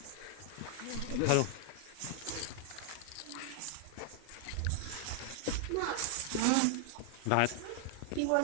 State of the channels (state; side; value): different; both; correlation 0.00